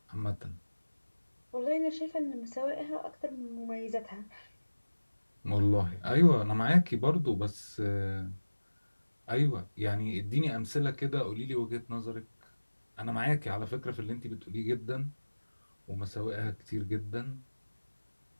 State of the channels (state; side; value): inverted; both; correlation -1.00